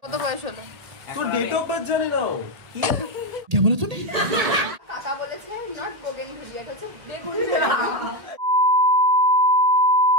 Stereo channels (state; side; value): late; left; 1.7 ms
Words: কত বয়স হলো? তোর ডেট অফ বার্থ জানি না। क्या बोला तूने? কাকা বলেছে নট বোগেনভিলিয়া, এটা হচ্ছে বেগুনভিলিয়া।